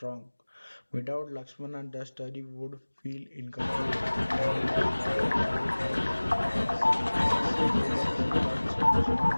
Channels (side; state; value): both; inverted; correlation -1.00